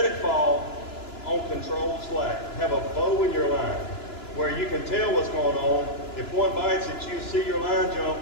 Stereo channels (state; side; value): late; right; 2.9 ms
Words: it fall on controlled slack. Have a bow in your line where you can tell what's going on. If one bites it, you see your line